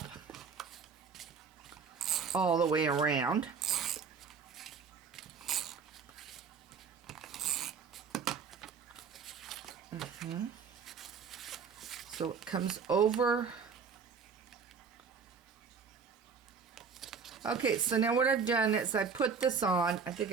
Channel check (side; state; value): left; quieter; 5.8 dB